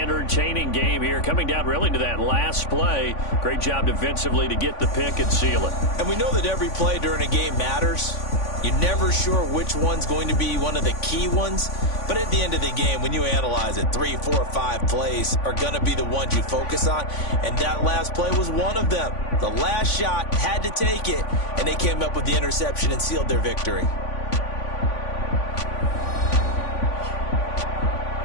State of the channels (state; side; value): late; right; 3.5 ms